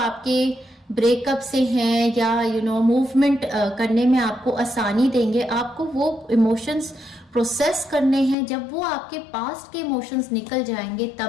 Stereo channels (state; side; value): drops out; right; at 8.3 s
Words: ब्रेकअप से हैं, या मूवमेंट करने में आपको आसानी देंगे, आपको वो इमोशंस प्रोसेस करने हैं। जब वो आपके पास्ट के इमोशंस निकल जाएंगे,